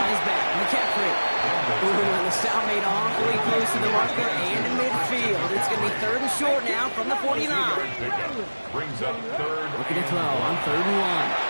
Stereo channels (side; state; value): both; inverted; correlation -1.00